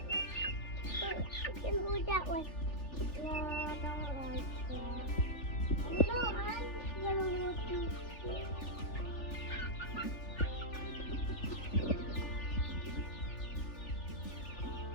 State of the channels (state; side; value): late; right; 3.4 ms